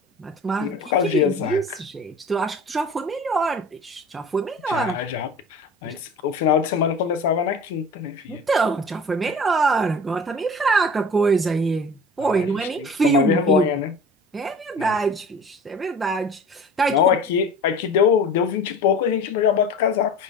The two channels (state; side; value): normal; both; correlation 0.39